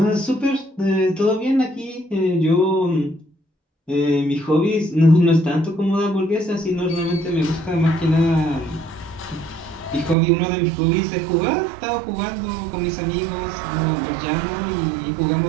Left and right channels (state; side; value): drops out; left; at 10.2 s